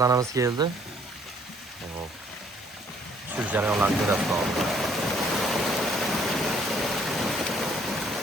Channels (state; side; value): normal; both; correlation 0.62